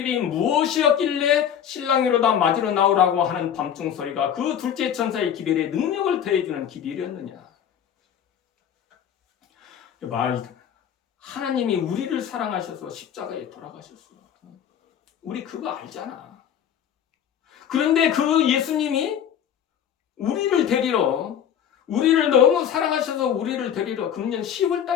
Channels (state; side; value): quieter; right; 9.1 dB